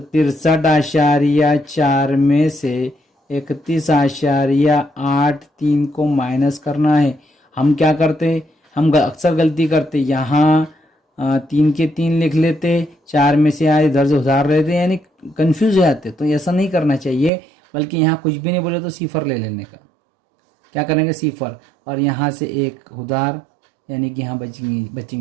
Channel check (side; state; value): left; drops out; at 17.3 s